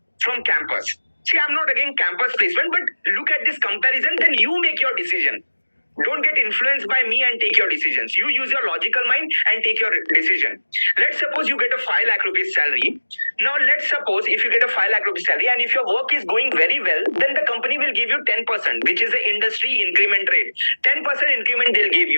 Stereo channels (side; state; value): both; inverted; correlation -1.00